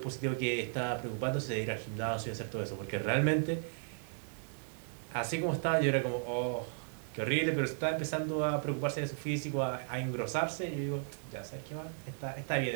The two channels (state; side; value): silent; left; digital silence